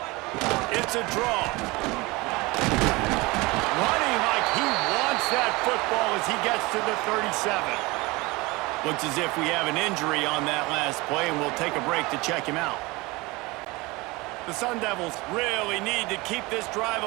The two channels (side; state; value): left; quieter; 23.3 dB